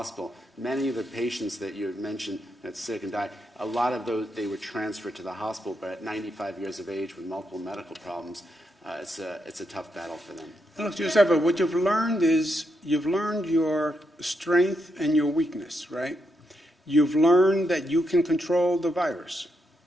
Many of the patients that you had mentioned that's sick and died, a lot of those, they were transferred to the hospital, but at 95 years of age with multiple medical problems, it's a tough battle for them. Look, Joseph, what you've learned is you've learned your strength and your weakness, right? You've learned that you can control the virus,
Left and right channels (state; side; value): normal; both; correlation 0.82